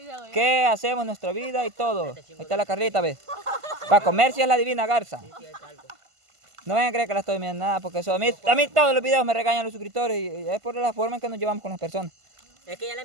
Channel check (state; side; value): late; left; 1.5 ms